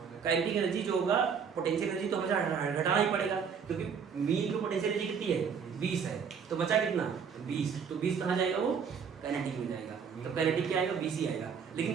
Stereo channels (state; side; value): quieter; left; 6.6 dB